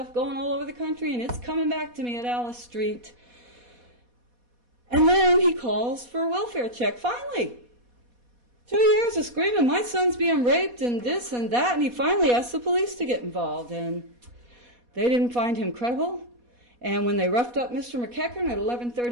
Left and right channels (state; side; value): late; left; 4.2 ms